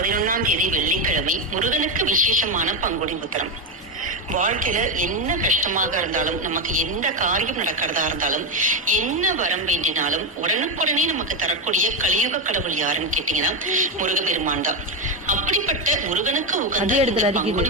தேதி வெள்ளிக்கிழமை முருகனுக்கு விசேஷமான பங்குனி உத்திரம். வாழ்க்கையில என்ன கஷ்டமாக இருந்தாலும், நமக்கு எந்த காரியம் நடக்கிறதா இருந்தாலும், என்ன வரம் வேண்டினாலும் உடனுக்குடனே நமக்கு தரக்கூடிய கலியுக கடவுள் யாருன்னு கேட்டீங்கன்னா முருகப்பெருமான் தான். அப்படிப்பட்ட முருகனுக்கு உகந்த இந்த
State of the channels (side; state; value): both; normal; correlation 0.10